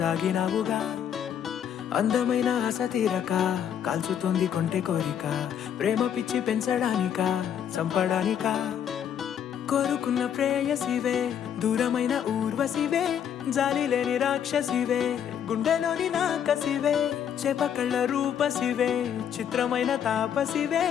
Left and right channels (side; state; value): right; quieter; 8.9 dB